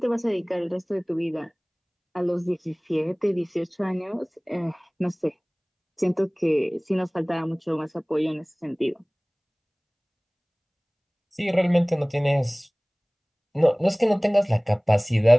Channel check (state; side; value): identical; both; correlation 1.00